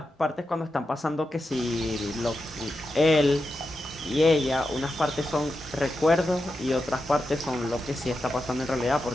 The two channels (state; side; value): normal; both; correlation 0.89